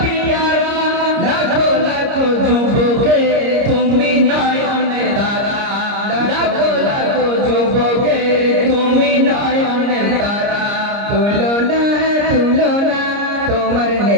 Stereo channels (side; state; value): left; late; 30 ms